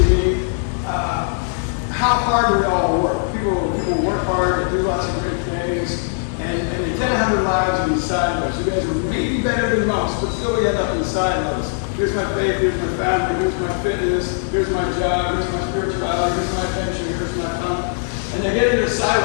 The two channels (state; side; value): silent; right; digital silence